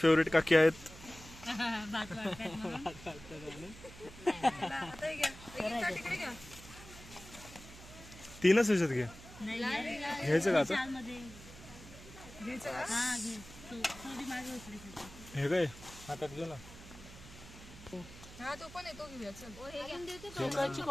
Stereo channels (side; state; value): right; noise; hum, 17 dB below the sound